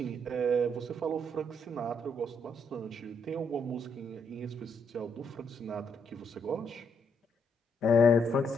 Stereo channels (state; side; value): normal; both; correlation 0.73